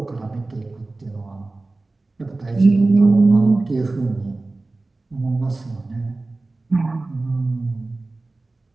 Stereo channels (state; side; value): quieter; left; 3.2 dB